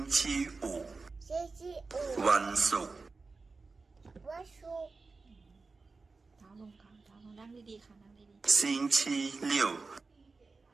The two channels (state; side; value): quieter; left; 4.1 dB